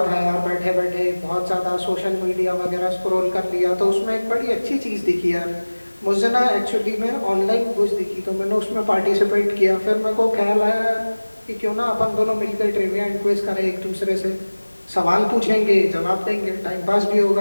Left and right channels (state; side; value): inverted; both; correlation -1.00